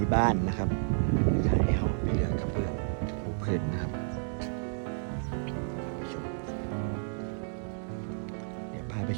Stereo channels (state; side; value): silent; left; digital silence